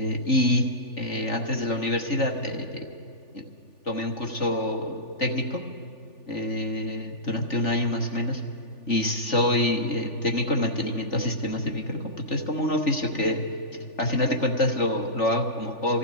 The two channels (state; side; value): late; right; 3.4 ms